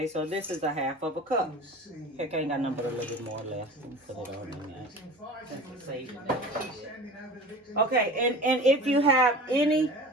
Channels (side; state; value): both; normal; correlation 0.37